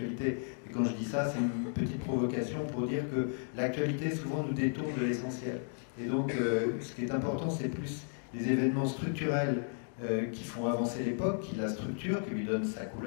Et quand je dis ça, c'est une petite provocation pour dire que l'actualité, souvent, nous détourne de l'essentiel. Et donc, ce qui est important, c'est plus les événements structurels qui font avancer l'époque, qui la structurent, qui lui donnent sa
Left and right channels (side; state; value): right; silent; 55 dB below the other